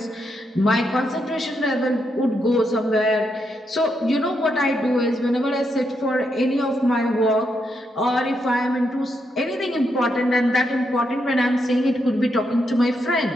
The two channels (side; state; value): both; normal; correlation 0.81